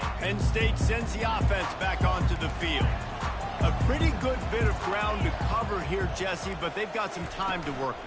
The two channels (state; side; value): identical; both; correlation 1.00